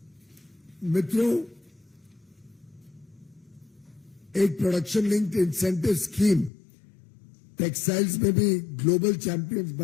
मित्रों, एक production linked incentive scheme textiles में भी ग्लोबल चैंपियंस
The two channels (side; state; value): right; drops out; at 6.5 s